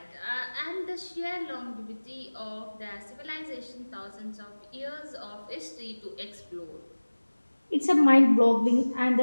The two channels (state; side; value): inverted; both; correlation -1.00